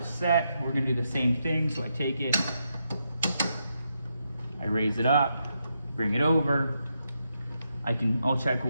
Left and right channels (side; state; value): both; inverted; correlation -0.82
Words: set. We're gonna do the same thing. So I take it, I raise it up, bring it over. I'll check